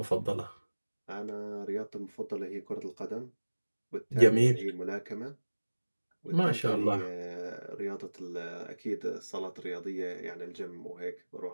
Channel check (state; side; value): inverted; both; correlation -1.00